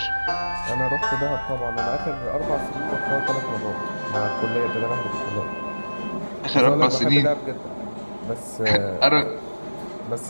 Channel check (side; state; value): both; inverted; correlation -1.00